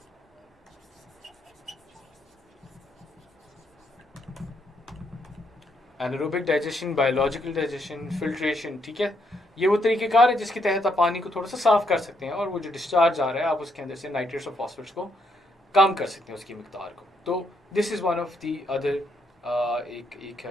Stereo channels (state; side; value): normal; both; correlation 0.75